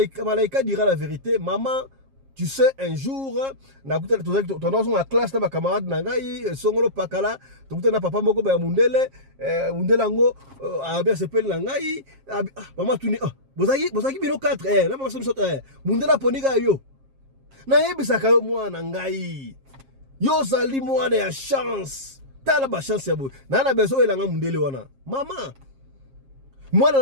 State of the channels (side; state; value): left; late; 7.4 ms